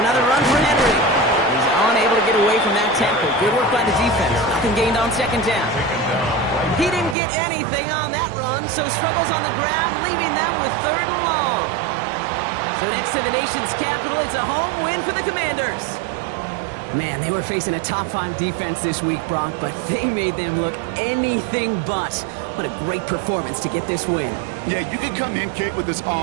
run for Henry. He's unable to get away from that tackle. Good work by the defense. Nothing gained on second down. He didn't get anything on that run, so struggles on the ground, leaving them with 3rd and long. So next to the nation's capital, it's a home win for the Commanders. Man, they were facing a top-5 defense this week, Brock, but they made them look anything but. What a great performance to get this win. Yeah, you can come in, Kate, with this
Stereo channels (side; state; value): left; drops out; at 7.2 s